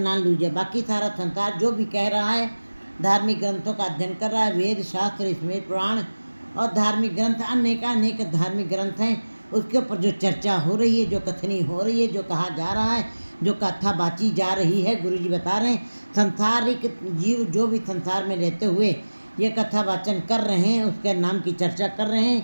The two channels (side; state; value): both; inverted; correlation -1.00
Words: लूझे। बाकी सारा संसार जो भी कह रहा है, धार्मिक ग्रंथों का अध्ययन कर रहा है, वेद शास्त्र स्मृति पुराण और धार्मिक ग्रंथ अनेक धार्मिक ग्रंथ हैं, उसके ऊपर जो चर्चा हो रही है, जो कथनी हो रही है, जो कहा जा रहा है, जो कथा बाची जा रही है, गुरु जी बता रहे हैं संसारिक जीव जो भी संसार में रहते हुए ये कथा वाचन कर रहे हैं, उसके नाम की चर्चा कर रहे